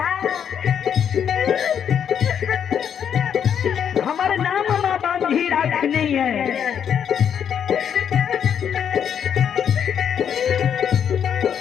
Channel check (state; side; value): quieter; right; 8.3 dB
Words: हमारे नाम माँ बांधी रखनी है